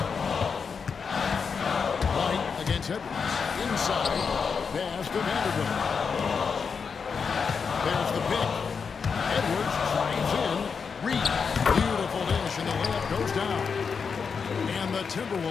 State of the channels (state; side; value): quieter; right; 5.8 dB